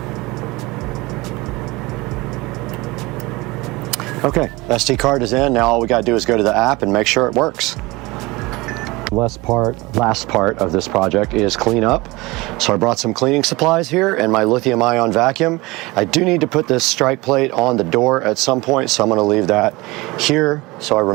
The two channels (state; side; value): quieter; left; 22.2 dB